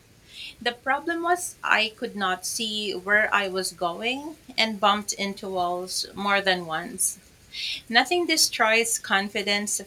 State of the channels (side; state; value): both; identical; correlation 1.00